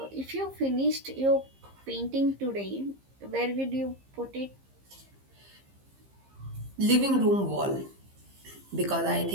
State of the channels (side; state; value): left; late; 15 ms